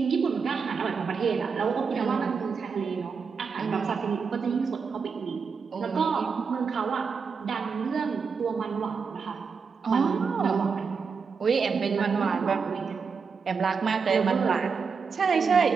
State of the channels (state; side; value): quieter; left; 5.5 dB